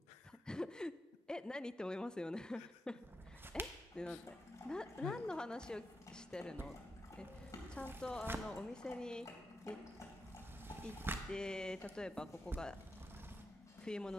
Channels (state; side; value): normal; both; correlation 0.86